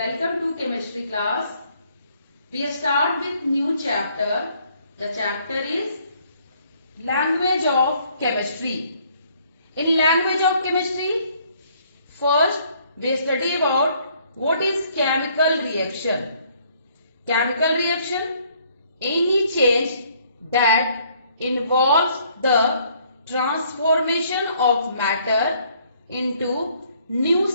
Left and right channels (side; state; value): both; inverted; correlation -0.64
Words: to chemistry class. We start with new chapter. The chapter is language of chemistry. In language of chemistry, first we study about what is chemical reaction. Chemical reaction, any change that involves the transformation of matter into new